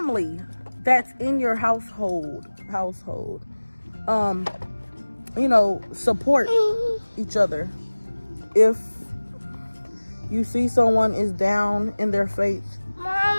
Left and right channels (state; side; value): inverted; both; correlation -1.00